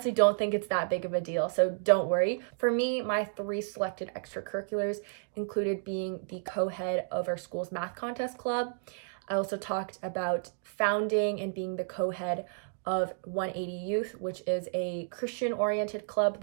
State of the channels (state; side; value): silent; left; digital silence